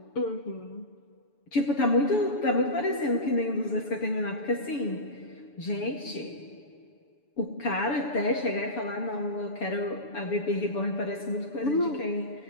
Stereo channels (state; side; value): late; right; 7.0 ms